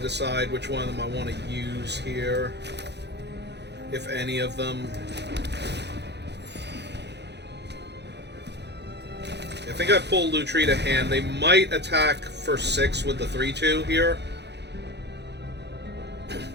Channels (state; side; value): late; left; 0.50 ms